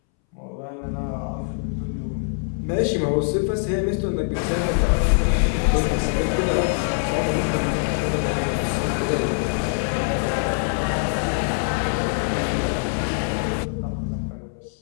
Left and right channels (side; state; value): right; silent; 63 dB below the other